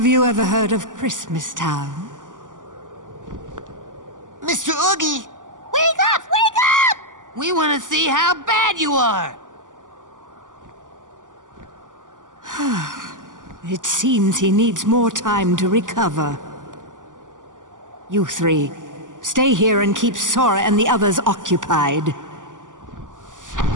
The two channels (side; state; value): left; late; 0.87 ms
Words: you ever heard of Christmas Town? Mr. Oogie! Wake up! Wake up! We want to see how bad you are! It seems he needs more time to recover. You three, Stay here and keep Sora and the others occupied.